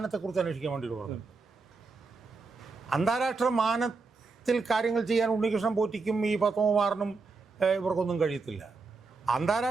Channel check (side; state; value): left; quieter; 4.2 dB